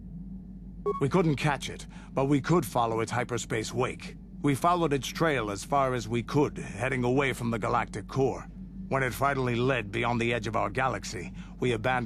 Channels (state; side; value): identical; both; correlation 1.00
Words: We couldn't catch it, but we could follow its hyperspace wake. We followed its trail as far as we could, heading away from the galactic core. When it finally led beyond the edge of our galaxy, we